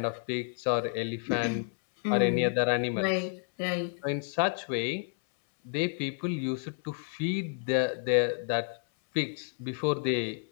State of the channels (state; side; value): silent; right; 58 dB below the other